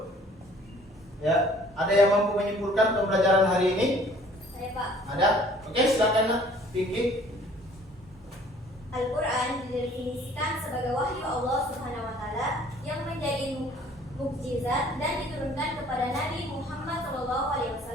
ya, ada yang mampu menyimpulkan pembelajaran hari ini? Saya Pak. Ada? Oke, silakan nak, Vicky. Al-Quran didefinisikan sebagai wahyu Allah Subhanahu wa Ta'ala yang menjadi mukjizat dan diturunkan kepada Nabi Muhammad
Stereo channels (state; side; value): normal; both; correlation 0.54